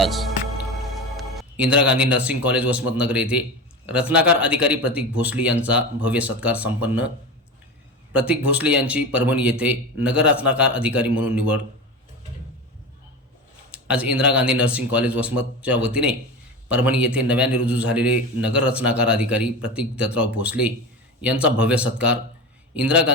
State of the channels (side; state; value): both; normal; correlation 0.26